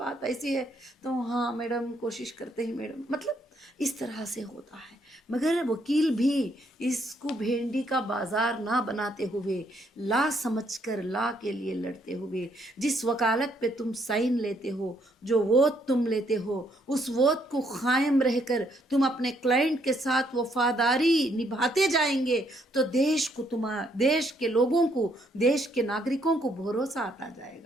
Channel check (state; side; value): normal; both; correlation 0.71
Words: ऐसी है। तो हाँ मैडम, कोशिश करते हैं मैडम, मतलब इस तरह से होता है। मगर वकील भी इसको भेंडी का बाजार ना बनाते हुए, ला समझकर ला के लिए लड़ते हुए, जिस वकालत पे तुम साइन लेते हो, जो वोट तुम लेते हो, उस वोट को कायम रहकर तुम अपने क्लाइंट के साथ वफादारी निभाते जाएंगे तो देश को, देश के लोगों को, देश के नागरिकों को भरोसा आता